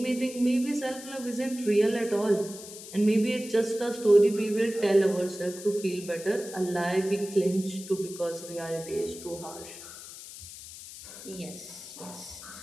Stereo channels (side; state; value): left; noise; hiss, 14 dB below the sound